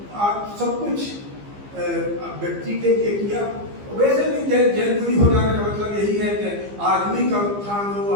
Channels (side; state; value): left; late; 15 ms